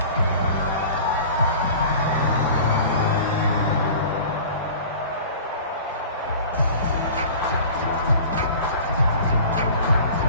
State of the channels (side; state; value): both; inverted; correlation -0.41